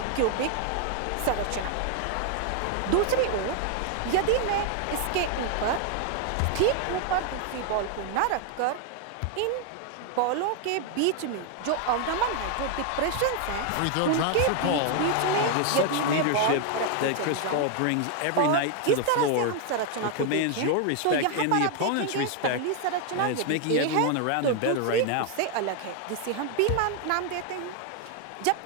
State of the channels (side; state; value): both; different; correlation 0.00